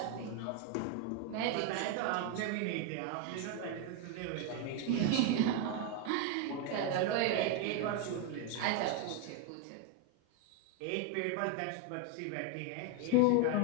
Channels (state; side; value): different; both; correlation 0.01